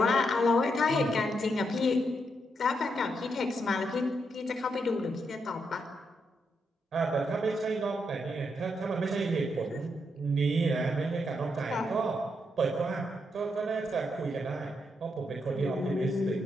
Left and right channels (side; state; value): both; normal; correlation 0.80